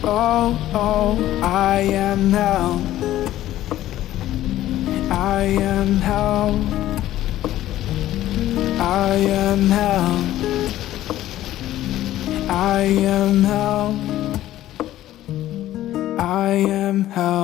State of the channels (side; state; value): right; quieter; 13.9 dB